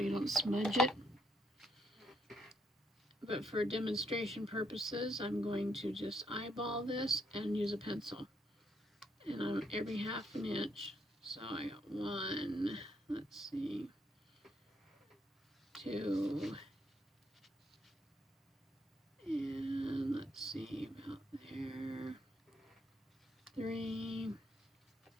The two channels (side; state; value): both; normal; correlation 0.74